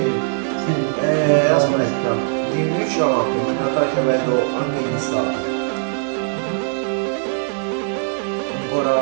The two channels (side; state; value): left; silent; digital silence